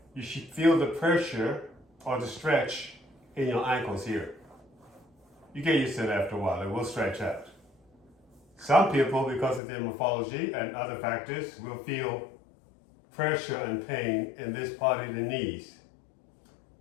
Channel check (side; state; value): right; drops out; at 9.6 s